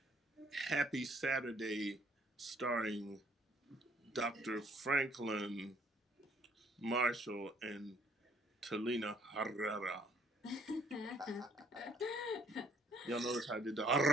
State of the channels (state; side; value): normal; both; correlation 0.63